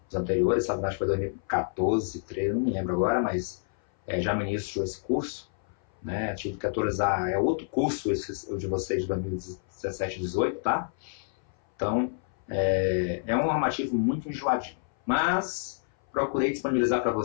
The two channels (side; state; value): right; silent; 57 dB below the other